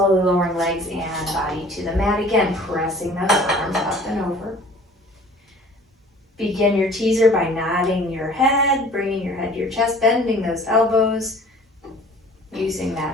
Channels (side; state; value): both; normal; correlation 0.49